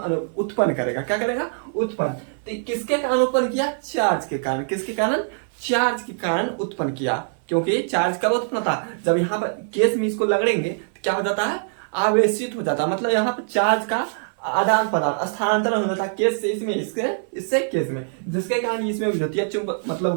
करेगा। क्या करेगा, उत्पन्न। तो किसके कारण उत्पन्न किया, चार्ज के कारण। किसके कारण, चार्ज के कारण उत्पन्न किया। क्योंकि चार्ज कब उत्पन्न होता, जब यहाँ पर केस में इसको लगड़ेंगे तो क्या हो जाता है, आवेशित हो जाता है। मतलब यहाँ पर चार्ज का आदान प्रदान, स्थानांतरण हो जाता है केस से इसमें, इससे केस में, जिसके कारण इसमें विद्युतीय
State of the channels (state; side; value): silent; left; digital silence